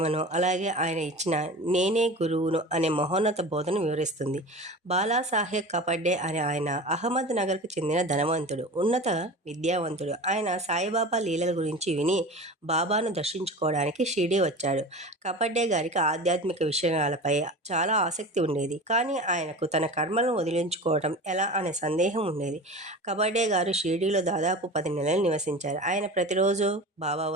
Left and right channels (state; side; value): normal; both; correlation 0.33